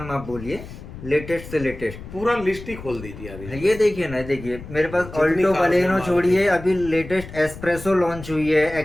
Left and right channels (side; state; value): left; noise; rumble, 13 dB below the sound